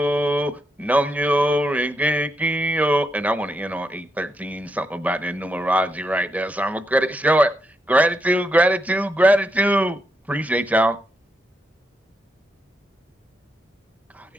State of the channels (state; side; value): normal; both; correlation 0.82